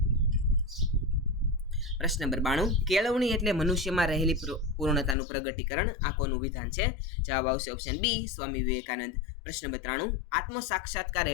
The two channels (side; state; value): right; drops out; at 5.2 s